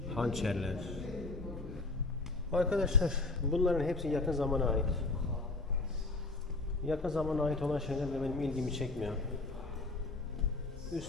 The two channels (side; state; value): right; quieter; 3.2 dB